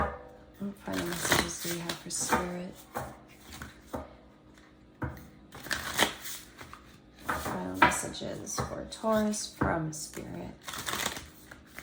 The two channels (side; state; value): both; identical; correlation 1.00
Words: What final messages do we have for Spirit? Final messages for Taurus from Spirit.